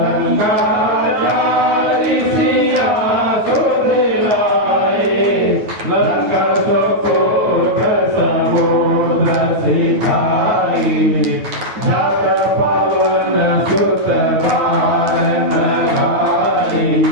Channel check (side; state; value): left; late; 9.3 ms